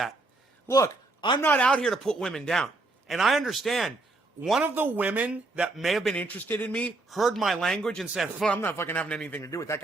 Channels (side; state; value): left; quieter; 3.1 dB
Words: Look, I'm not out here to put women down. And I understand. One of the women that may have been interested in me heard my language and said, well, I'm not fucking having anything to do with that